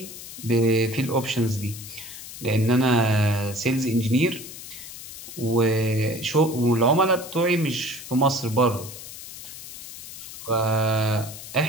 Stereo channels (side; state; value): left; noise; hiss, 13 dB below the sound